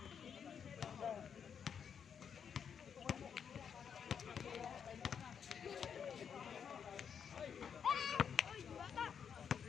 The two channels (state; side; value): quieter; right; 7.4 dB